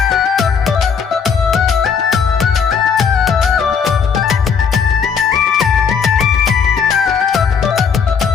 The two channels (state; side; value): quieter; right; 6.4 dB